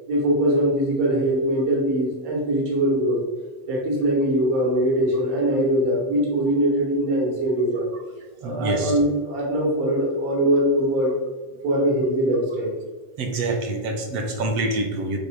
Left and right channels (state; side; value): late; left; 7.8 ms